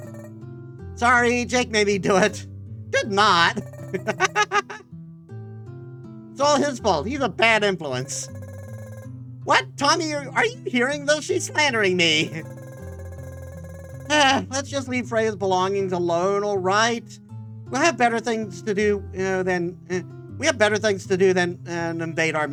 Sorry, Jake made me do it. Did not. It's all his fault. He's a bad influence. What? Tommy, are you hearing this? She's slandering me. Let's just leave Freya's belongings alone, all right? We'll have better things to do than invade our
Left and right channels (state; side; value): identical; both; correlation 1.00